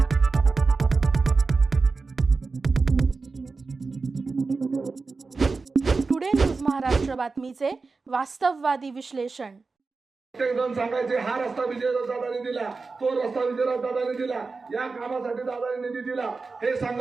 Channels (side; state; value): left; quieter; 4.2 dB